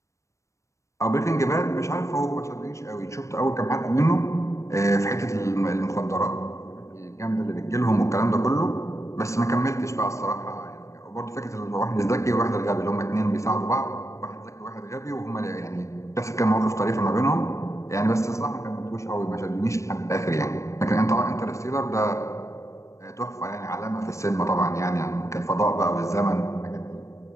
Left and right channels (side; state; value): right; late; 0.15 ms